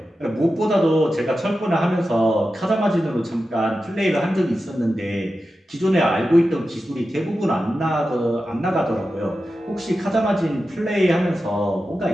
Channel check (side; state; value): both; normal; correlation 0.92